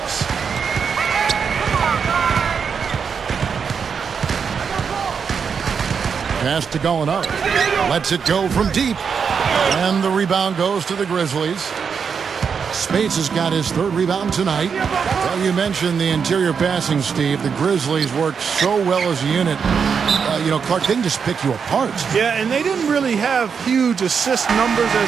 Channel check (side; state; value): left; quieter; 6.3 dB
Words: Pass to Gallinari. Lets it go from deep. And the rebound goes to the Grizzlies. Spates has got his third rebound tonight. Well, you mentioned the interior passing, Steve. The Grizzlies work so well as a unit. Clark, they can just pick you apart. Yeah, and they didn't really have huge assist numbers